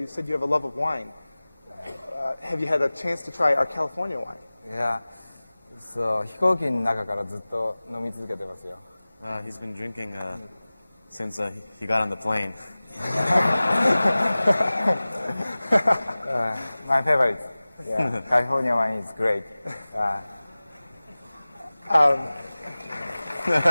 said you have a love of wine. Have you had a chance to try our California wine? いや、そう、飛行機の中からずっと飲み続けてますよ。He's been drinking since he got on the plane. My favorite. Yeah, California wine is great.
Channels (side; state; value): both; inverted; correlation -0.99